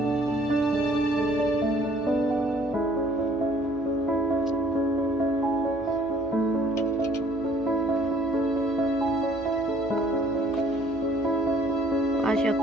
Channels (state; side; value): normal; both; correlation 0.58